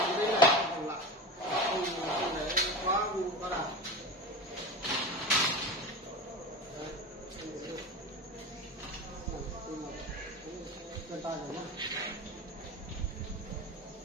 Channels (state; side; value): normal; both; correlation 0.28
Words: Quá đà. vân tay rồi nhá.